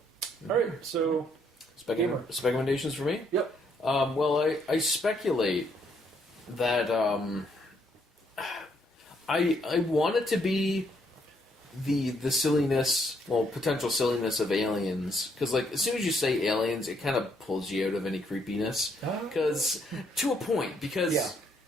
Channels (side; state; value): both; normal; correlation 0.71